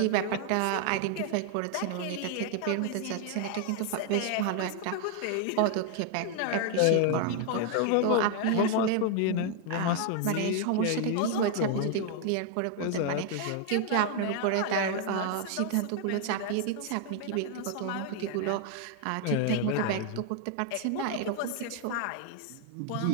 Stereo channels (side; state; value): both; different; correlation 0.00